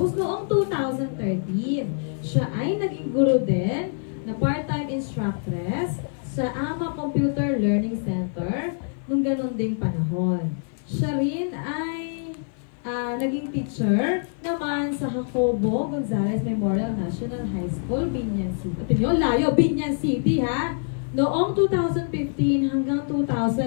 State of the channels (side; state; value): right; silent; 55 dB below the other